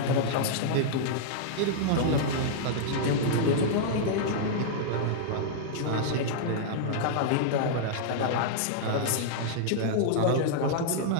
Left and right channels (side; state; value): both; different; correlation -0.01